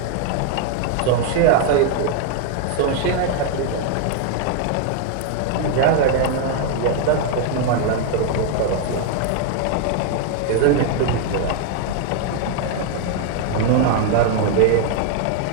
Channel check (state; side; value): different; both; correlation 0.01